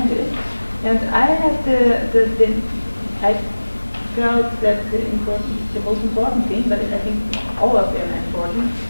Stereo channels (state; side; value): inverted; both; correlation -1.00